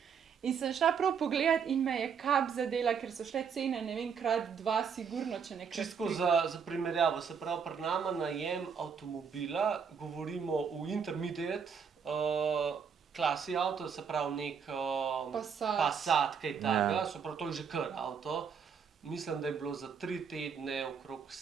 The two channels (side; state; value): left; quieter; 6.6 dB